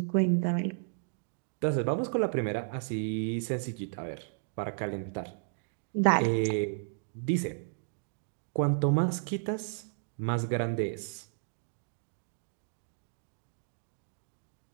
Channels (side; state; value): left; silent; digital silence